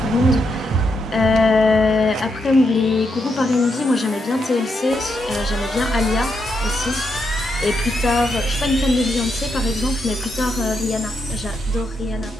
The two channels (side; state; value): both; normal; correlation 0.81